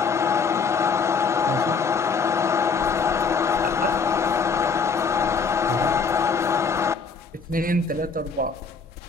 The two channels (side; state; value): right; quieter; 5.2 dB